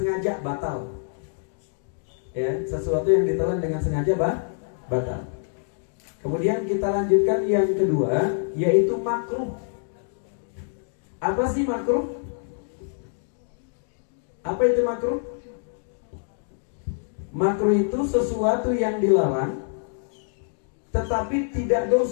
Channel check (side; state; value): right; silent; digital silence